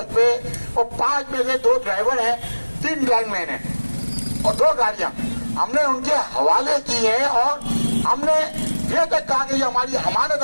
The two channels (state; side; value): inverted; both; correlation -1.00